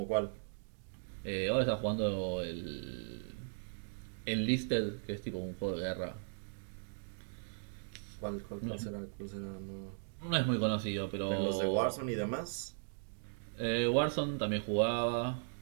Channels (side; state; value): left; silent; digital silence